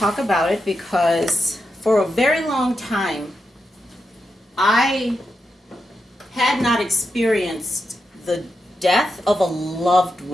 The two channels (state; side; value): normal; both; correlation 0.87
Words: about it because for a very long time, I had not experienced the death of a loved